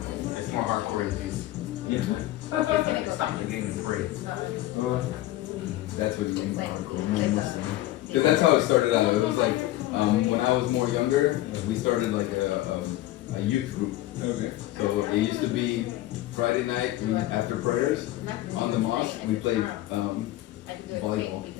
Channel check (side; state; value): right; quieter; 15.8 dB